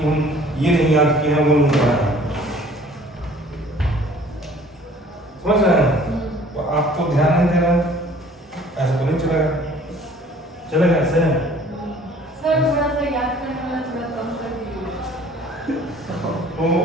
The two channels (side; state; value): both; normal; correlation 0.53